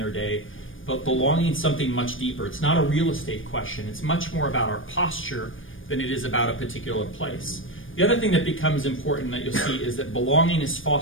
day. but belonging is something much deeper. It's not a real estate question. It's much more about our posture than it is about a particular place. The other thing that becomes important that you'll see is that belonging is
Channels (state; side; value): late; right; 0.58 ms